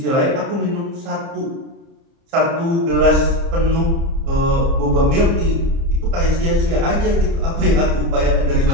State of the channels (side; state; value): left; late; 30 ms